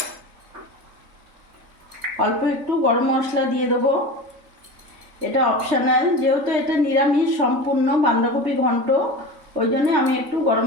অল্প একটু গরম মশলা দিয়ে দেবো। এটা অপশনাল, যেহেতু এটা নিরামিষ সম্পূর্ণ বাঁধাকপি ঘন্ট, ওই জন্য আমি একটু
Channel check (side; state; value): left; late; 3.3 ms